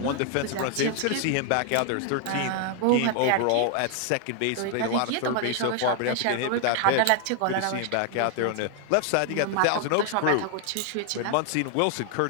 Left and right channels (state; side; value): different; both; correlation 0.00